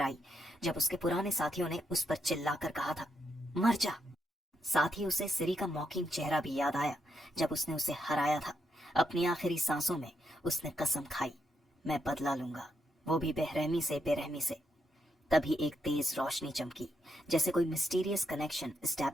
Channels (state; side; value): normal; both; correlation 0.81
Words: आई, जब उसके पुराने साथियों ने उस पर चिल्लाकर कहा था, मर जा। साथ ही उसे सिरी का मॉकिंग चेहरा भी याद आया, जब उसने उसे हराया था। अपनी आखिरी सांसों में उसने कसम खाई, मैं बदला लूंगा, वो भी बेरहमी से। तभी एक तेज रोशनी चमकी, जैसे कोई मिस्टीरियस कनेक्शन